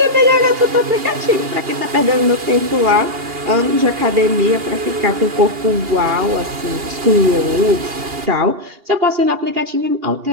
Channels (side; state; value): left; late; 2.9 ms